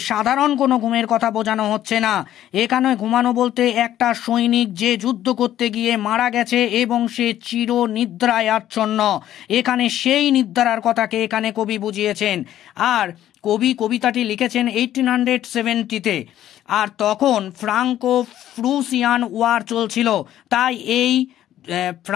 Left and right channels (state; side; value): quieter; right; 12.2 dB